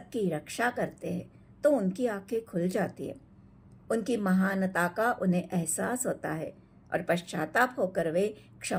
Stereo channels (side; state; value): both; identical; correlation 1.00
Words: रक्षा करते हैं, तो उनकी आंखें खुल जाती है। उनकी महानता का उन्हें एहसास होता है और पश्चाताप होकर वे